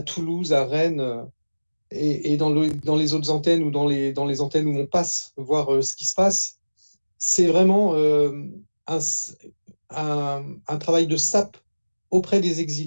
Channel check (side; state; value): both; inverted; correlation -1.00